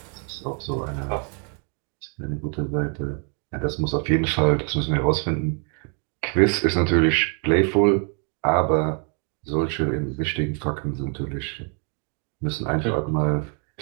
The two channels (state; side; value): quieter; left; 39.8 dB